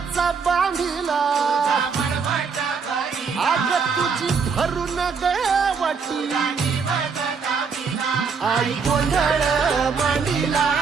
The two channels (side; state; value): left; quieter; 5.6 dB